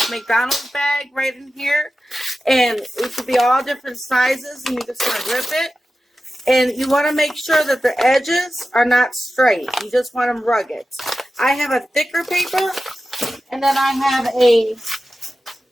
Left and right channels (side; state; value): both; normal; correlation 0.93